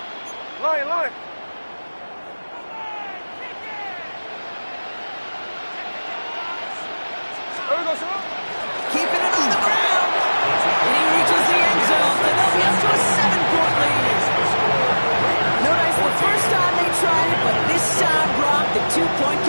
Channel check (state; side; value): inverted; both; correlation -1.00